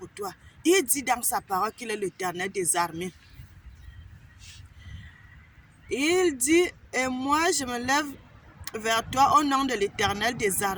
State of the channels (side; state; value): both; identical; correlation 1.00